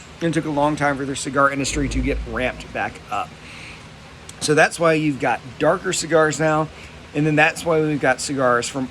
and it took a long time for their cigar industry to get ramped back up. So that's why you've got darker cigars now, and then that's why we've got cigars from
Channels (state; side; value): identical; both; correlation 1.00